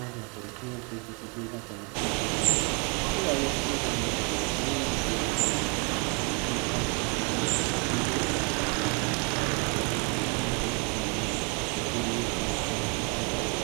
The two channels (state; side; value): quieter; left; 34.1 dB